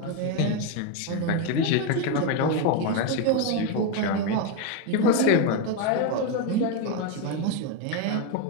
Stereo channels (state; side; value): different; both; correlation 0.02